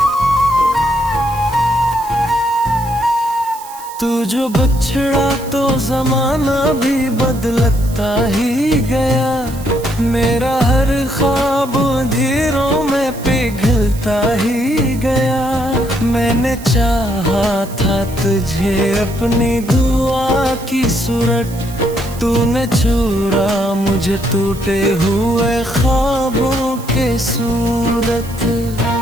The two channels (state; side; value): noise; right; hiss, 17 dB below the sound